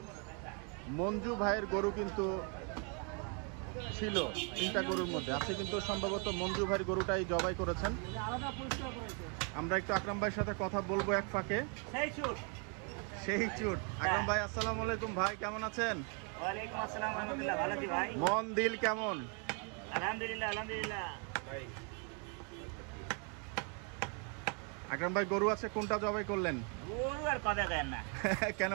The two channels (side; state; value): left; quieter; 37.5 dB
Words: মঞ্জু ভাইয়ের গরু কিন্তু ছিল 3টা গরুর মধ্যে। আজকে কিন্তু সম্ভবত মঞ্জু ভাইয়ের গরুটাই জবাই করেছেন। আমরা একটু আকরাম ভাইয়ের সাথে কথা বলবো এক ফাঁকে। সেই চুট। আকরাম ভাই আসসালামু আলাইকুম, ভাই কেমন আছেন? ওয়ালাইকুম আসসালাম, আলহামদুলিল্লাহ ভালো আছি ভাই। মন দিল কেমন? আলহামদুলিল্লাহ আলহামদুলিল্লাহ। আকরাম ভাই গরু আছে, কোনটা জবাই করলেন? গরু আর কথা কেন না। কেন